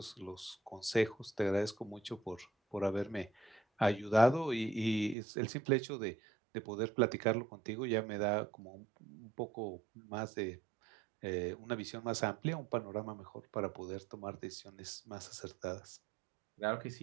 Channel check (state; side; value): drops out; left; at 5.2 s